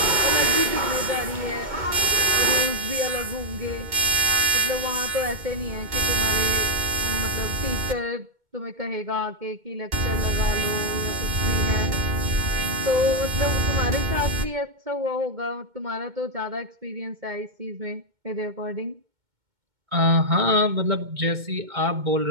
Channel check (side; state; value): left; late; 2.2 ms